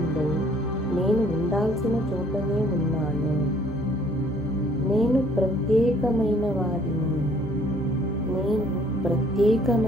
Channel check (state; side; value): normal; both; correlation 0.60